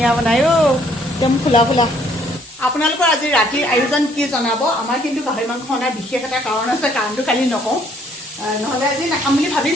বনাই অ' একদম ফুলা ফুলা আপোনালোকৰ আজি ৰাতিৰ আয়োজন কি জনাব আমাৰ কিন্তু গাহৰি মাংস অনাৰ বিশেষ এটা কাৰণ আছে কাৰণটো কালি নকওঁ নহ'লে আজি নাখাম বুলি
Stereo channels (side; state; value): both; normal; correlation 0.65